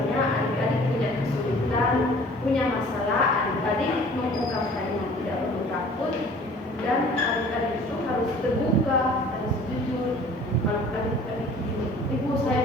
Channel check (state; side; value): normal; both; correlation 0.49